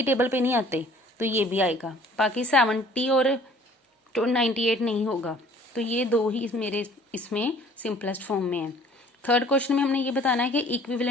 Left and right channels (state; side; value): normal; both; correlation 0.53